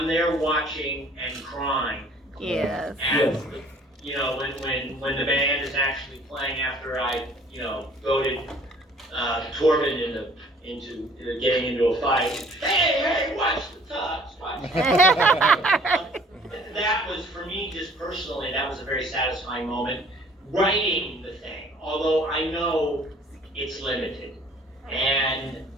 there watching and crying. Yes. And you know, when the band is actually playing after I goaded Torben into getting into a fight. Hey, watch the tux, watch. That was, for me, just personally, that was a very satisfying moment. Writing the thing, although I know it's limited, and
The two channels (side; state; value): both; normal; correlation 0.54